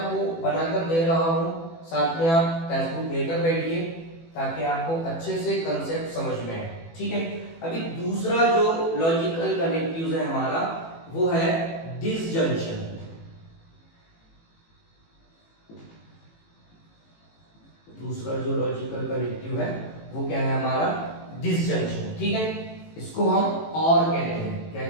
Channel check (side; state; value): right; late; 18 ms